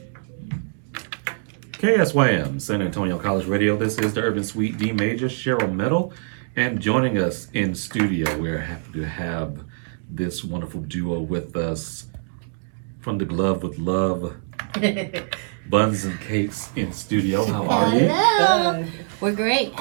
KSYM, San Antonio College Radio. This is the Urban Suite D Major, Cheryl Metal. And joining us in studio, we're happy to have this wonderful duo with us from the Glove with Love, Bunz and Cakes in studio. How are you? Hello. We're great.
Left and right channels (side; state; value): left; silent; digital silence